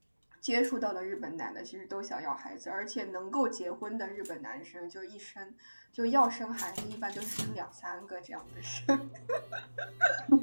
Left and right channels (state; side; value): inverted; both; correlation -1.00